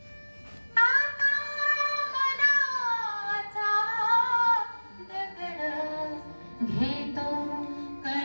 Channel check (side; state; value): both; inverted; correlation -1.00